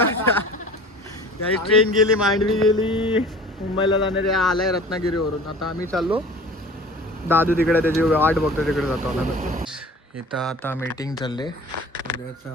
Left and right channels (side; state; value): both; normal; correlation 0.43